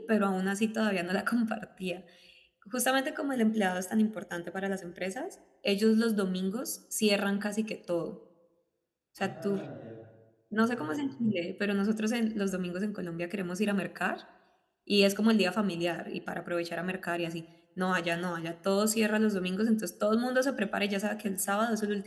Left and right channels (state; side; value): identical; both; correlation 1.00